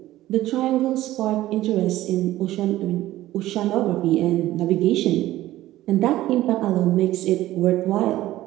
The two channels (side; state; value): left; quieter; 15.2 dB